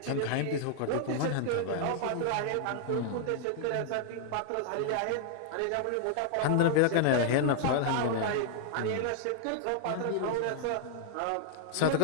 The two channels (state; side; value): different; both; correlation -0.01